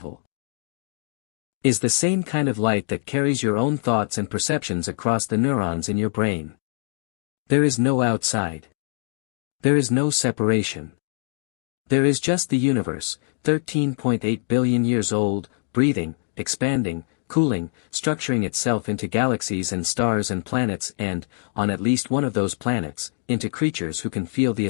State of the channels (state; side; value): silent; right; digital silence